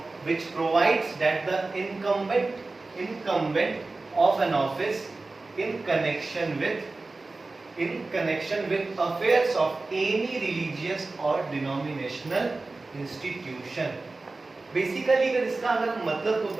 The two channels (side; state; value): left; quieter; 3.4 dB